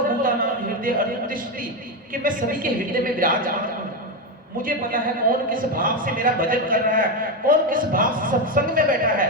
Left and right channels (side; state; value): both; normal; correlation 0.10